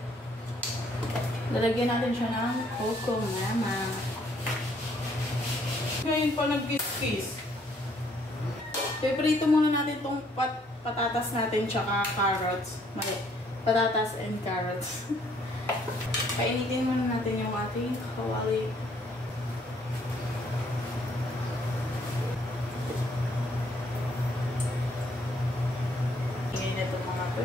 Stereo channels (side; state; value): both; normal; correlation 0.66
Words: Lalagyan natin siya ng coco mama. Ngayon pa nag-kiss. Piprito muna natin itong patatas natin tsaka carrots. Mali. Patatas and carrots. Painitin muna natin yung ating kawali. Ngayon ito mga